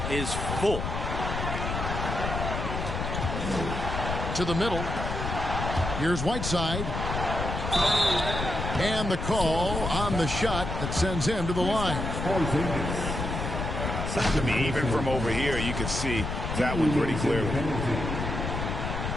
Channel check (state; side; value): noise; left; rumble, 3 dB below the sound